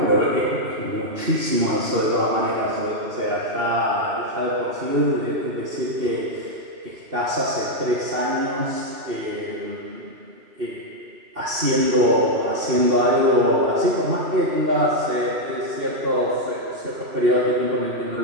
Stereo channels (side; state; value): left; late; 2.7 ms